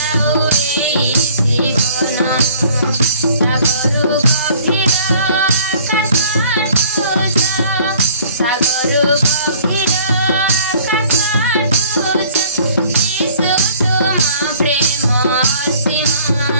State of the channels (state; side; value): inverted; both; correlation -0.53